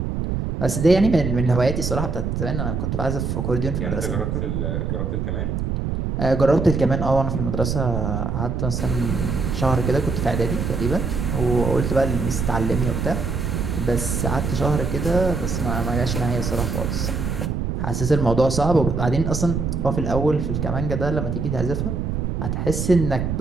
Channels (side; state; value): right; noise; rumble, 1 dB below the sound